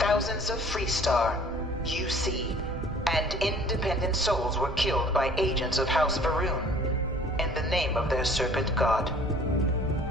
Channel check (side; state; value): both; normal; correlation 0.52